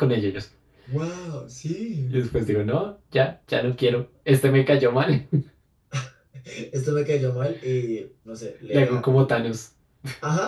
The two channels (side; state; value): both; identical; correlation 1.00